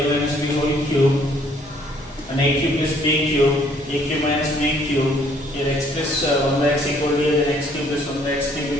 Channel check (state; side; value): normal; both; correlation 0.63